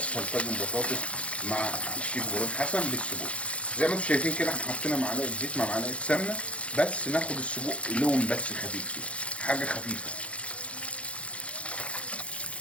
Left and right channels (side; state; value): right; late; 0.062 ms